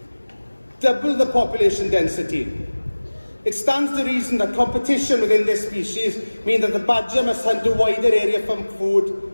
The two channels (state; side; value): inverted; both; correlation -1.00